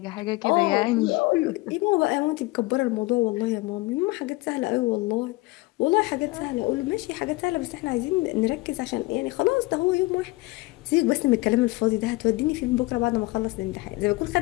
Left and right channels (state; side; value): quieter; right; 22.1 dB